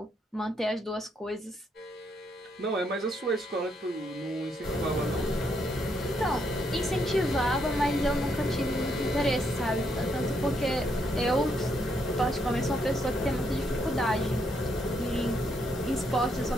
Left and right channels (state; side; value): normal; both; correlation 0.75